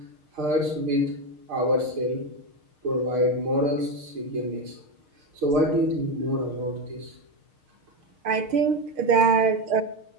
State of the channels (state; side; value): late; left; 6.5 ms